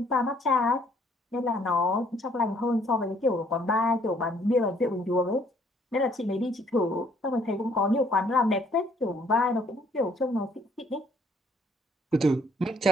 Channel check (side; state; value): both; normal; correlation 0.63